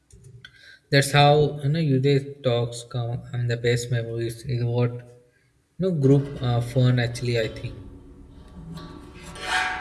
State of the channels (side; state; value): both; identical; correlation 1.00